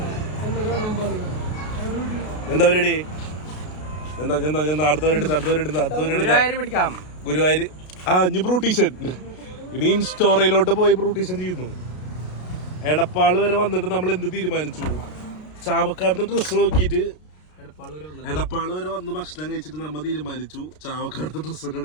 എന്താ പരിപാടി? എന്താ അടുത്തവരുടെ പിടിക്കാം. ഗുരുവായൂർ. ഇനി ബ്രൂട്ടീഷൻ. ഇനി ഇൻസ്റ്റോറയിലോട്ട് പോയി ബ്രൂട്ടീഷൻ ചെയ്യുന്നു. എടപ്പാള് വരെ വന്നിട്ട് നമ്മൾ എന്ത് തീരുമാനിച്ചു? ചാവക്കാട് ഡ്രസ്സ് നോക്കിയിട്ട് എടപ്പാള് വരെ വന്ന് ഭക്ഷണം കഴിച്ചിട്ട് നമ്മൾ തീരുമാനിച്ചു ചാവക്കാടത്തെ ഡ്രസ്സ് തന്നെ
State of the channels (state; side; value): late; right; 33 ms